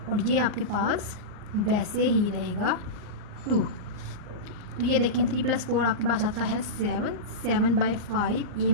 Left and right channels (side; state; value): left; late; 39 ms